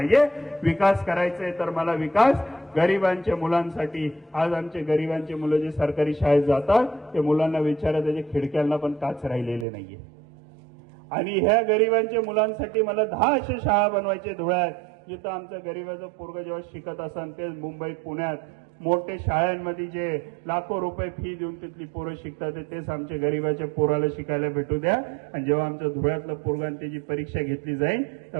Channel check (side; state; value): left; drops out; at 9.7 s